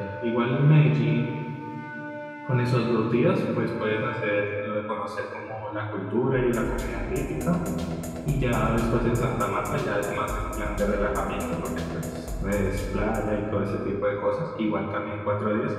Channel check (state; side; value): identical; both; correlation 1.00